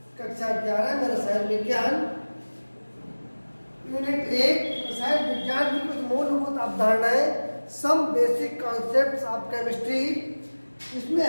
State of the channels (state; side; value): inverted; both; correlation -1.00